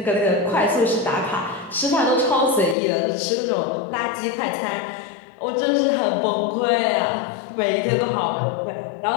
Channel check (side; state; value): right; drops out; at 2.8 s